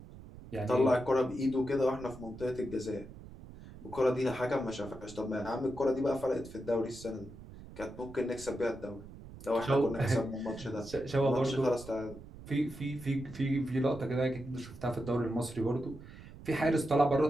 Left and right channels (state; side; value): noise; right; rumble, 16 dB below the sound